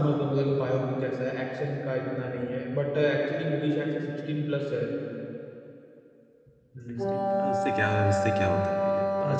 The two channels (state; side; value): identical; both; correlation 1.00